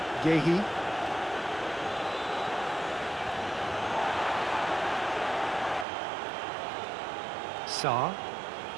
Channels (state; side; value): drops out; left; at 5.9 s